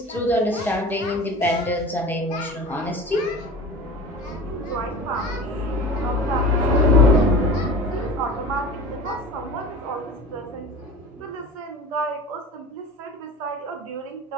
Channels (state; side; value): normal; both; correlation 0.37